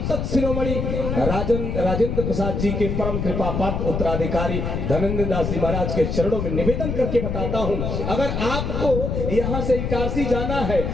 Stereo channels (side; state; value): left; noise; rumble, 2 dB below the sound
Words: शिरोमणि राजेंद्र प्रसाद जी के परम कृपा पात्र उत्तराधिकारी धनेंद्र दास जी महाराज के चरणों में निवेदन करके बताता हूँ, अगर आपको यहाँ से इटारसी जाना है,